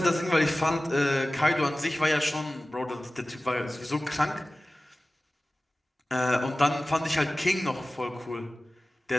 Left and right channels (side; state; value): both; normal; correlation 0.97